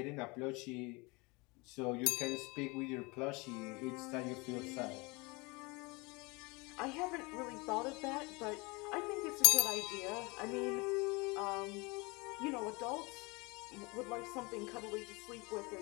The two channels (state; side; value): quieter; right; 26.5 dB